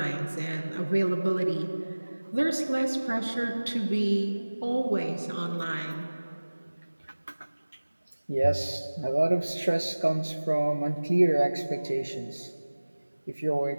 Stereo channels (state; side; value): inverted; both; correlation -1.00